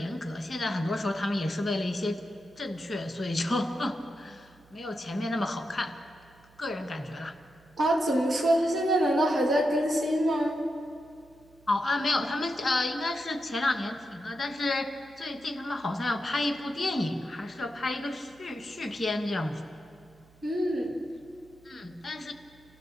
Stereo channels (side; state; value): right; noise; hum, 27 dB below the sound